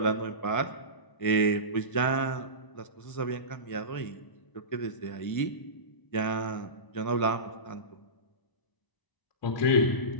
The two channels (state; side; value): late; right; 1.0 ms